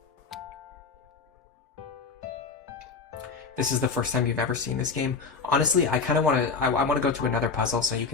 This is the first time you've ever seen this game. Honestly, I kind of want to. I want to go to another puzzle so you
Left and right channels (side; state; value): right; quieter; 4.8 dB